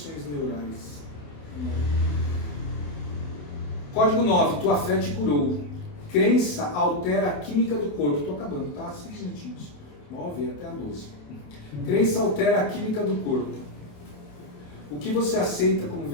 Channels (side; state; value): right; late; 28 ms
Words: neurais. Código 9, tua fé te curou. Crença altera a química do corpo. Estou acabando, tá? 5 minutinhos. 9 até a 12. Crença altera a química do corpo. O que você aceita como